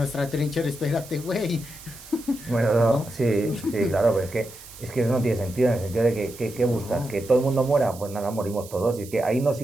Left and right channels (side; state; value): right; noise; hiss, 17 dB below the sound